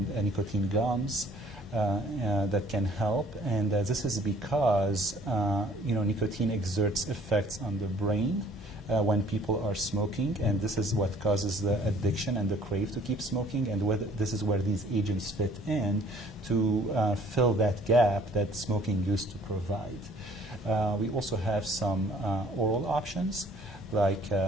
nicotine gums that can help. And this is because nicotine exerts effects on the brain when people are smoking, and this is what causes the addiction and the crave to keep smoking, and this is where these agents fit in to fill that gap that smoking used to provide. We also have some oral options like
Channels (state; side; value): normal; both; correlation 0.57